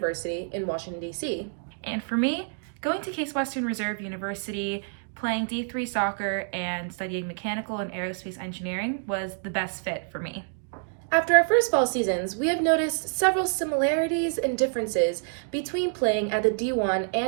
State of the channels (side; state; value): left; silent; digital silence